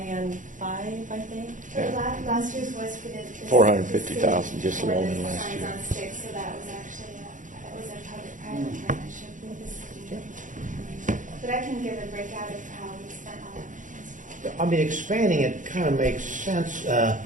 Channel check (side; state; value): left; late; 0.37 ms